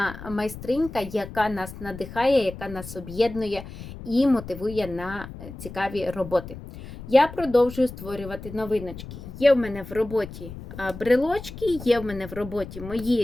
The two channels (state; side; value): noise; left; rumble, 13 dB below the sound